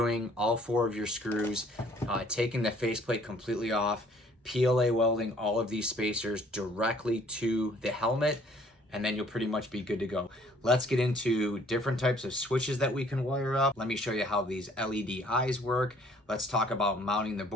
all 4 of your screws, taking the faceplate completely off, PLA welding all of these spacers directly to the helmet, and then you'll pretty much be good to go. Let's get into different types of switches that we can wire up. Let me show you how these LED eyes work. Let's talk about mounting the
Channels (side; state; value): both; normal; correlation 0.59